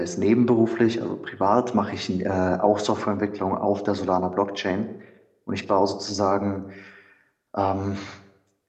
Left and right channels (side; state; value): both; identical; correlation 1.00